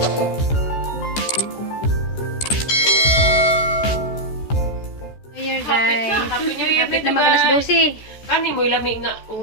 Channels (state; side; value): late; right; 14 ms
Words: Hapit na magalas 12. Kani mo ilami nga